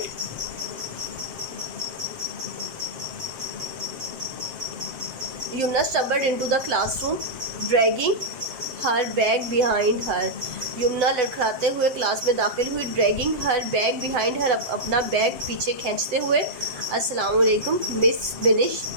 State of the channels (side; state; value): left; late; 7.5 ms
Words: Yumna stumbled into the classroom, dragging her bag behind her. Yamuna लड़खड़ाते हुए क्लास में दाखिल हुई. Dragging her bag behind her, अपना बैग पीछे खींचते हुए. अस्सलाम वालेकुम miss Binish,